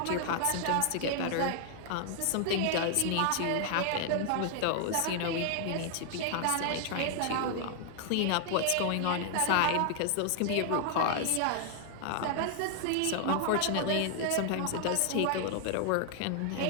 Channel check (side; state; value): both; different; correlation 0.00